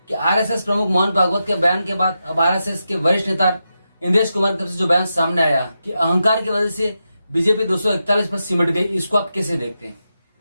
कि आरएसएस प्रमुख मोहन भागवत के बयान के बाद अब आरएसएस के वरिष्ठ नेता इंद्रेश कुमार की तरफ से जो बयान सामने आया कि अहंकार की वजह से बीजेपी 241 पर सिमट गई, इसको आप कैसे देखते हैं?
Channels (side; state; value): both; inverted; correlation -0.88